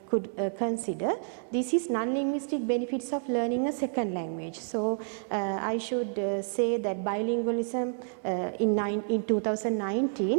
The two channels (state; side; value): silent; left; digital silence